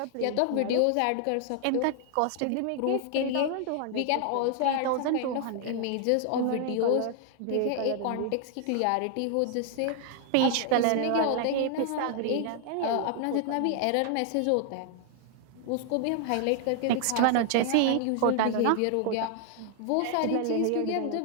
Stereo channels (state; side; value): different; both; correlation 0.00